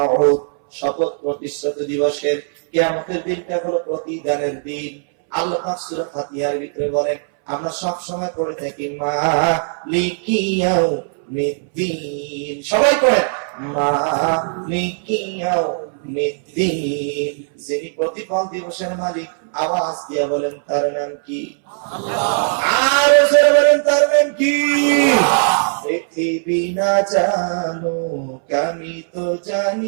শপথ প্রতিশ্রুতি দিবসের। কিয়ামতের দিনটা হলো প্রতিদানের দিন। আল্লাহ পাক সূরা ফাতিহার ভিতরে বলেন, আমরা সব সময় করে থাকি মালিকি ইয়াউমিদ্দিন। সবাই করেন মালিকি ইয়াউমিদ্দিন। যিনি প্রতিফল দিবসের মালিক, আওয়াজ দিয়ে বলেন তার নাম কি? আল্লাহ। আর জোরে বলেন তার নাম কি? পৃথিবী না জানুক আমি তো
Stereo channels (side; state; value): left; silent; 65 dB below the other